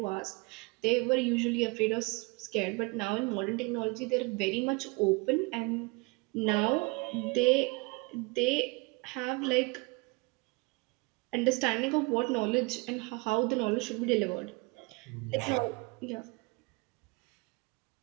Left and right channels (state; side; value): quieter; left; 27.9 dB